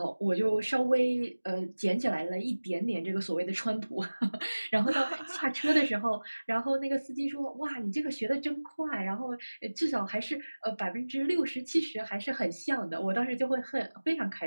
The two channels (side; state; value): both; inverted; correlation -1.00